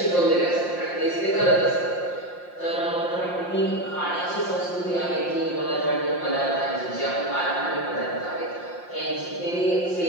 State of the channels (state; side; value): late; right; 5.7 ms